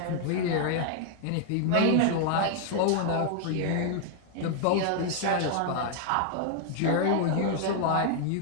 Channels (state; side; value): different; both; correlation 0.00